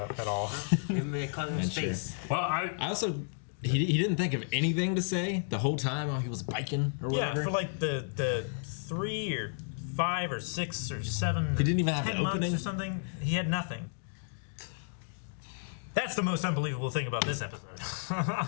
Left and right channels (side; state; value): right; silent; digital silence